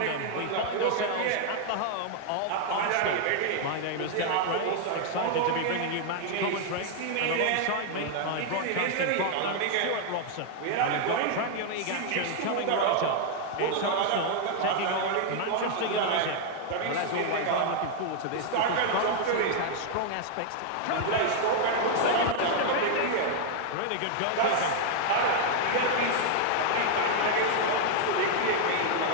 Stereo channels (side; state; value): both; different; correlation 0.00